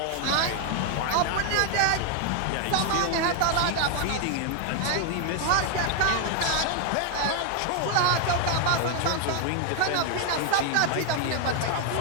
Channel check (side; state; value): both; different; correlation 0.00